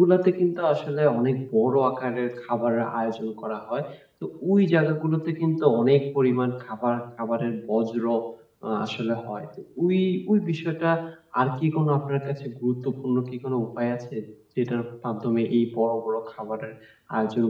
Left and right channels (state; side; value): identical; both; correlation 1.00